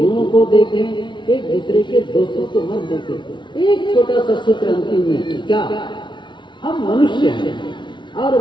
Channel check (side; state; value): right; late; 0.23 ms